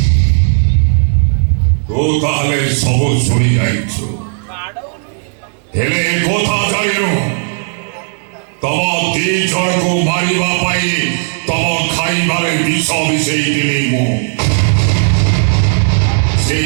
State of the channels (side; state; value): left; silent; digital silence